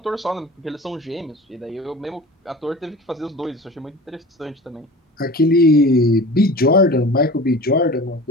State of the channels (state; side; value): normal; both; correlation 0.37